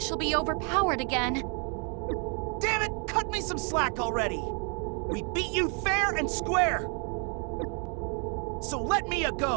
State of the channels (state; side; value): quieter; left; 37.1 dB